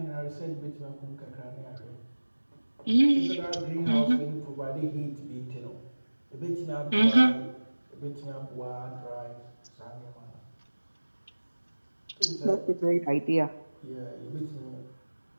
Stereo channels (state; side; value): inverted; both; correlation -1.00